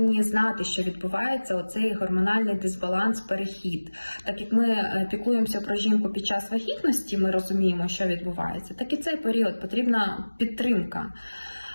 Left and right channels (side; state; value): both; inverted; correlation -1.00